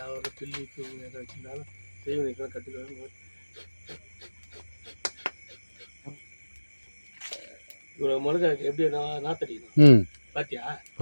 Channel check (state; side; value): inverted; both; correlation -1.00